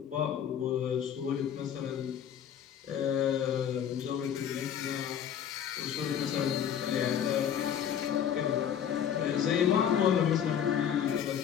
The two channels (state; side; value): quieter; right; 9.0 dB